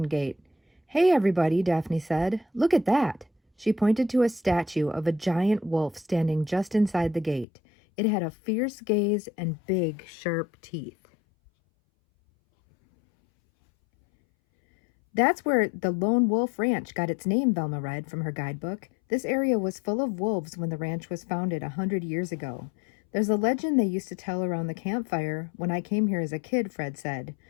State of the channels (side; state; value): right; drops out; at 7.5 s